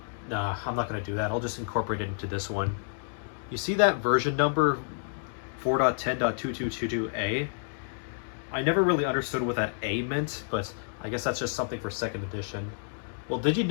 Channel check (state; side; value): silent; right; digital silence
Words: nah, I'm not going to do that. I'll just incorporate it into this one. You see that version number 4.10.2222A? I never really understood what that A meant, but I guess that's just something for second edition. Well, did you